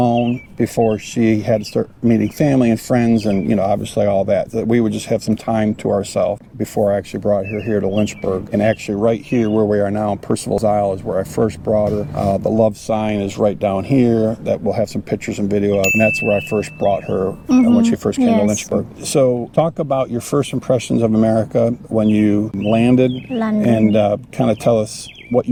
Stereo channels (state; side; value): identical; both; correlation 1.00